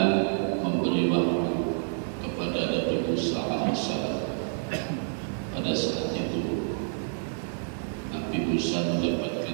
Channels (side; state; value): left; silent; digital silence